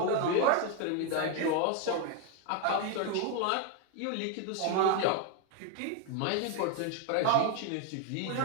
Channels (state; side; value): different; both; correlation 0.01